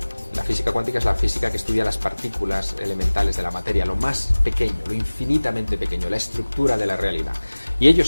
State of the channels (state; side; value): inverted; both; correlation -1.00